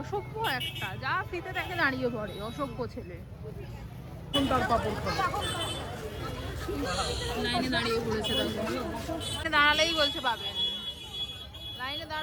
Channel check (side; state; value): both; identical; correlation 1.00